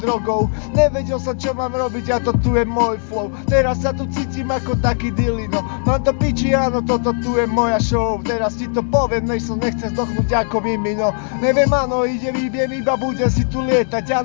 drogou. Nevedel som, čo mám robiť a to tu je môj flow. Teraz sa tu cítim ako taký dilino. Mám to piči, áno, toto tu je moja show. Teraz ti to poviem, než som nechcem zdochnúť ako mimino. Neviem, áno, idem, iba budem si tu lietať.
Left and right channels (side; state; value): right; silent; 62 dB below the other